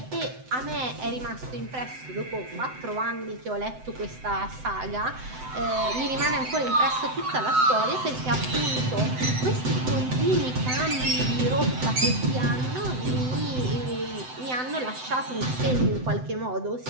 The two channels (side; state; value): left; late; 7.8 ms